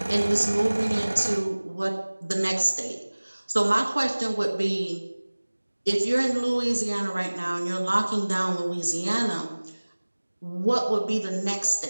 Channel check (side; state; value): both; inverted; correlation -1.00